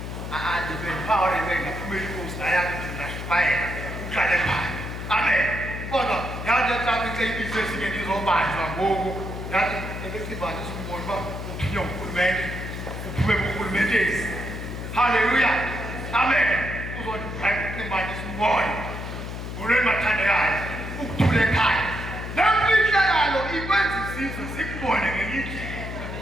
ndibendiphawulebenga phumela inkosi nayami ndinashumayela uhlale phaya amen kodwa yathi etraffic seyibize ezinye ndizobanjwa ngoku yathi ekecimbanisa umboni uba uthunywa ngurhulumente uphume kurhulumenteni haleluya amen uzondibheka ucimbanisa umboni ngolweni mathandekayo ukuthula ekhaya lemfihlakalo ikwenza isizwe sikubone ngenye indlela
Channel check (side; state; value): left; noise; hum, 7 dB below the sound